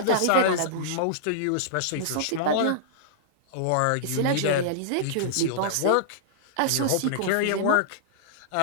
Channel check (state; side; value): different; both; correlation -0.02